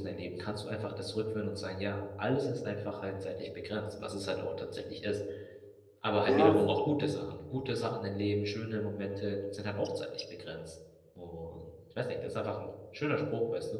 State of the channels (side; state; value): both; identical; correlation 1.00